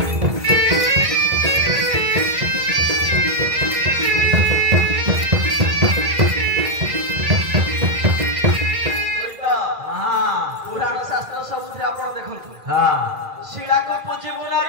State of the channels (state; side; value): late; left; 2.0 ms